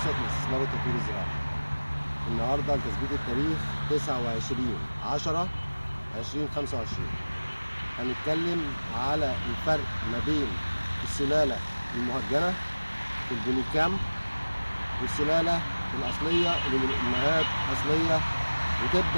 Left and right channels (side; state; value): both; inverted; correlation -1.00